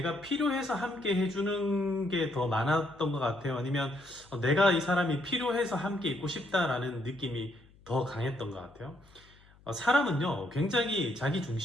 필요해서 함께 해주는 게 더 많았던 것 같아요. 아니면 내가 이 사람이 필요해서 함께 있고 싶다라는 느낌이 더 강했던 것 같아요. 사람은요, 굉장히 자기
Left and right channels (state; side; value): noise; left; hum, 27 dB below the sound